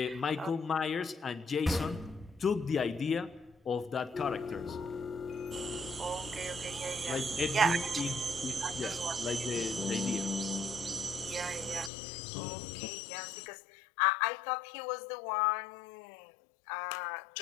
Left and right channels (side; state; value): right; drops out; at 11.9 s